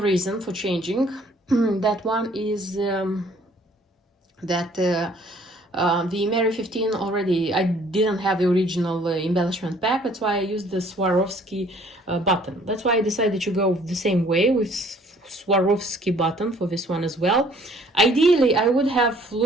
for changing that one is that the Mary 15 already, I didn't have the original embellishment pack, that's why I used the Swarovski button. That's why I decided to go the same way with Swarovski button for this one as well. Ideally, I would have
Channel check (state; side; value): normal; both; correlation 0.58